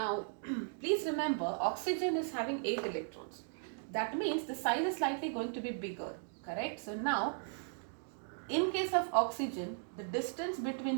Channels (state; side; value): silent; left; 53 dB below the other